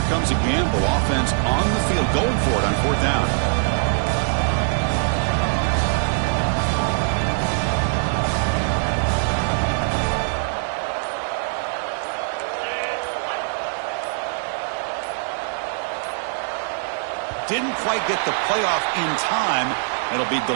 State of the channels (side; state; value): left; silent; digital silence